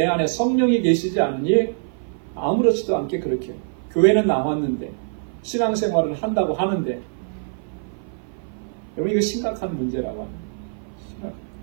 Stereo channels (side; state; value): left; silent; 56 dB below the other